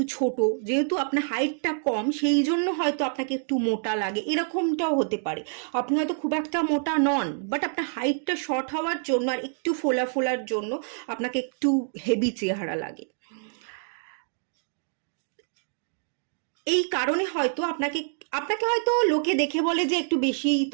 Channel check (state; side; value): silent; left; digital silence